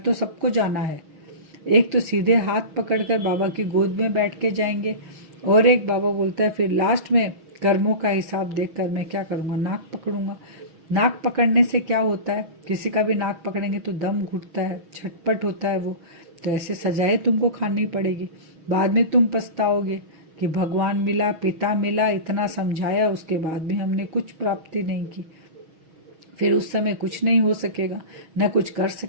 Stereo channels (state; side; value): late; left; 6.3 ms